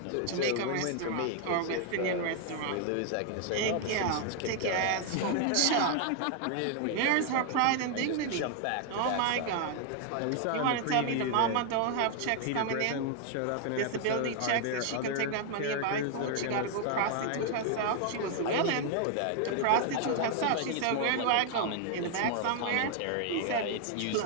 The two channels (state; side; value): different; both; correlation 0.00